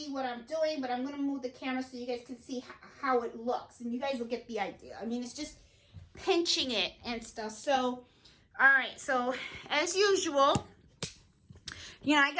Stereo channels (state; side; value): identical; both; correlation 1.00